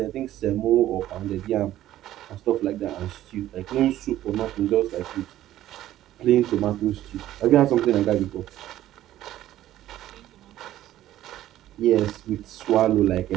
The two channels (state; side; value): quieter; left; 13.5 dB